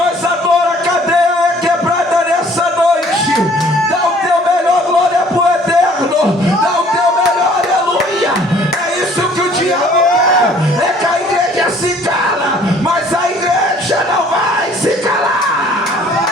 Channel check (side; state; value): both; normal; correlation 0.56